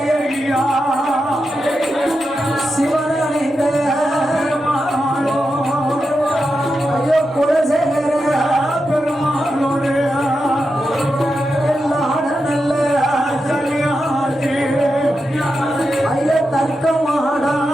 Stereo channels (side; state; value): both; normal; correlation 0.88